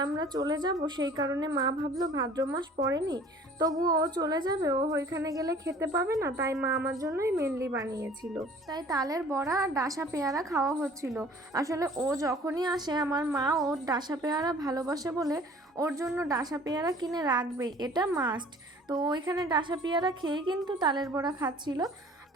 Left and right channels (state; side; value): normal; both; correlation 0.50